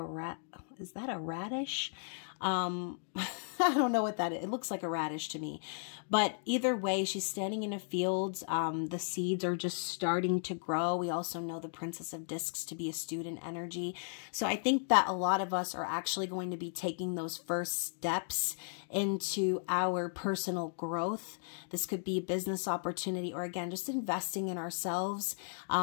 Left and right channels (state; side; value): silent; right; digital silence